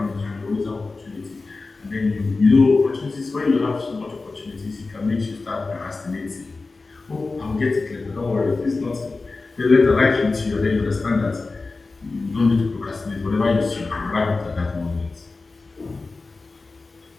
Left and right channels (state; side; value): quieter; right; 3.7 dB